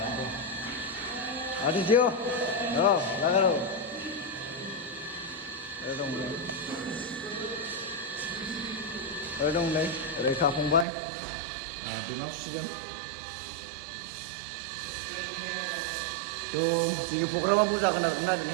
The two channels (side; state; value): left; drops out; at 10.9 s